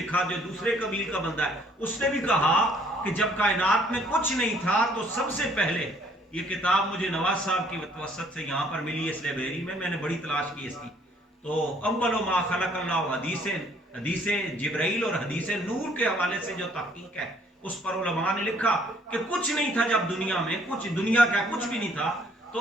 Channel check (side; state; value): both; normal; correlation 0.62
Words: جو دوسرے قبیل کا بندہ ہے, اس نے بھی کہا کہ جب کائنات میں کچھ نہیں تھا تو سب سے پہلے, یہ کتاب مجھے نواز صاحب کی وسط سے یہاں پر ملی اس لائبریری میں نے بڑی تلاش کی اس کی, تو اول ما خلق اللہ حدیث جبرائیل اور حدیث نور کے حوالے سے جو تحقیق ہے اس پر علماء نے لکھا کہ کچھ نہیں تھا جب دنیا میں, کچھ دنیا کا کچھ بھی نہیں تھا,